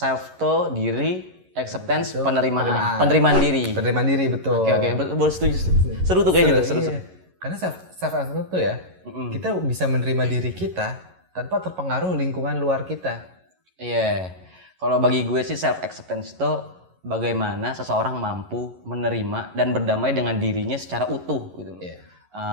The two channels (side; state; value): left; late; 11 ms